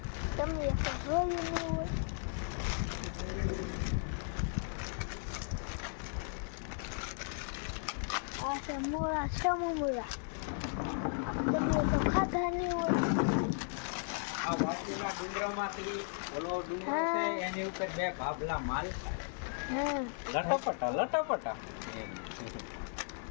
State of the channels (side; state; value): right; silent; 54 dB below the other